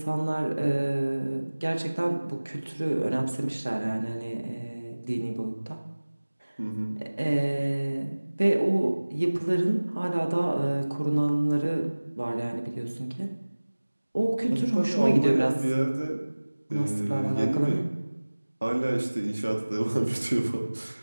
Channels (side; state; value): both; inverted; correlation -1.00